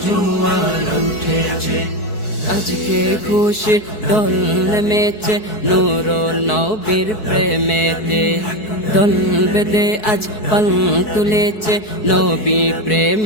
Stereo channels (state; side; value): late; right; 4.6 ms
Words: জোয়ার উঠেছে। আজকে খুশির দোল নেমেছে নূর নবীর প্রেমেতে। দোল বেঁধে আজ পাল তুলেছে নবী